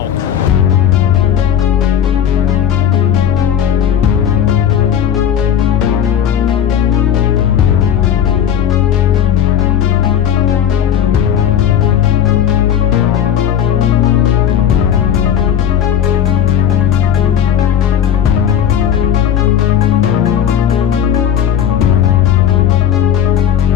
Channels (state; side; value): quieter; right; 9.4 dB